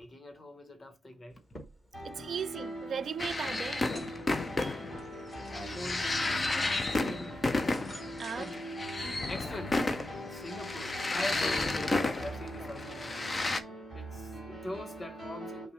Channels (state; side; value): normal; both; correlation 0.88